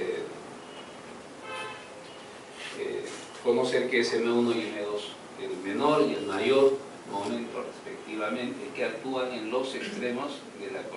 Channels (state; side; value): identical; both; correlation 1.00